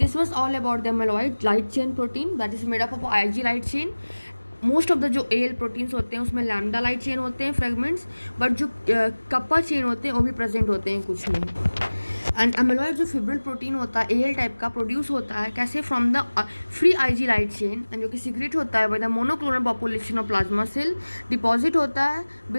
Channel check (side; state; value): both; inverted; correlation -1.00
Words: was all about the amyloid light chain protein that is made up of Ig light chain. Most of the जो L proteins होते हैं उसमें lambda light chain होते हैं fragments, but जो kappa chain होते हैं वो भी प्रेजेंट होते हैं कुछ में. एंड एमिलॉइड जो फिब्रिल प्रोटीन होता है एल टाइप का प्रोड्यूस होता है कैसे from the free Ig light chain, and जो कि सीक्रेट होता है by the monoclonal population of plasma cell, deposit होता है